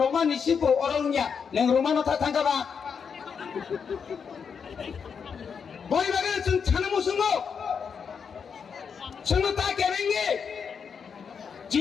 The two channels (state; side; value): quieter; right; 6.4 dB